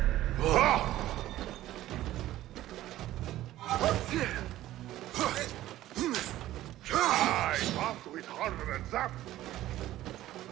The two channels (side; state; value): left; quieter; 14.6 dB